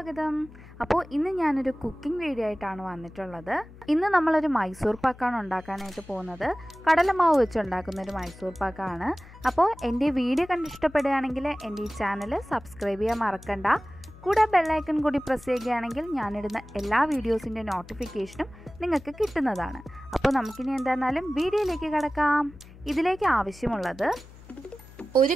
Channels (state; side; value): noise; left; hum, 20 dB below the sound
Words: അപ്പോൾ ഇന്ന് ഞാനൊരു കുക്കിംഗ് വീഡിയോ ആയിട്ടാണ് വന്നിട്ടുള്ളത്. ഇന്ന് നമ്മളൊരു മൈസൂർ പാക്കാണ് ഉണ്ടാക്കാനായിട്ട് പോകുന്നത്. കടലമാവ് വെച്ച് ഉണ്ടാക്കുന്നൊരു മൈസൂർ പാക്കാണ്. അപ്പോൾ എൻ്റെ വീഡിയോ കണ്ടിഷ്ടപ്പെടുകയാണെങ്കിൽ എൻ്റെ ഈ ചാനൽ സബ്സ്ക്രൈബ് ചെയ്യാൻ മറക്കണ്ട. കൂടെ ബെല്ലൈക്കൺ കൂടി പ്രസ് ചെയ്യുകയാണെങ്കിൽ ഞാനിടുന്ന എല്ലാ വീഡിയോസിൻ്റെ നോട്ടിഫിക്കേഷനും നിങ്ങൾക്ക് കിട്ടുന്നതാണ്. അപ്പോൾ നമുക്കിനി എന്തായിരുന്നാലും വീഡിയോയിലേക്ക് കടക്കാം. ഇതിലേക്ക് ആവശ്യമുള്ളത് 1